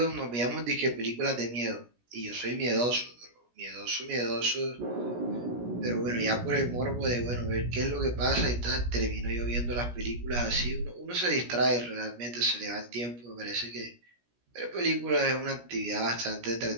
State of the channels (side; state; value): left; late; 17 ms